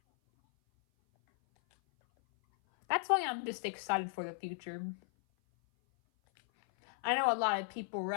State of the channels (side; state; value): right; silent; 54 dB below the other